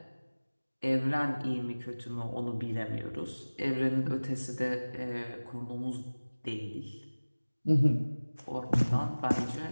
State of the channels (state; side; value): inverted; both; correlation -1.00